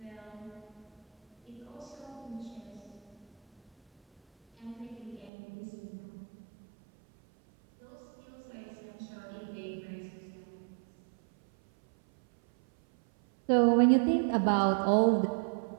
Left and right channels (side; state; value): left; drops out; at 5.3 s